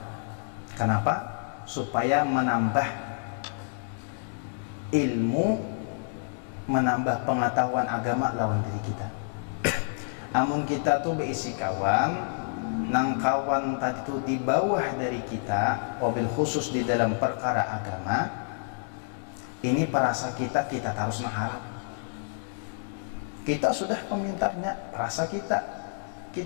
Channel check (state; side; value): silent; right; digital silence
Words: Kenapa? Supaya menambah ilmu, menambah pengetahuan agama lawan diri kita. Amun kita tuh berisi kawan nang kawan tadi tuh di bawah dari kita, wabil khusus di dalam perkara agama, ini perasa kita harus mengharap. Kita sudah pemintarnya, perasa